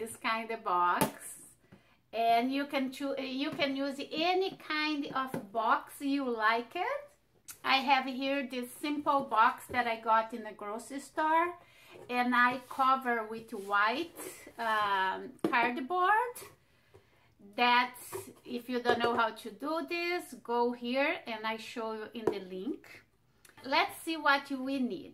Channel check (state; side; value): identical; both; correlation 1.00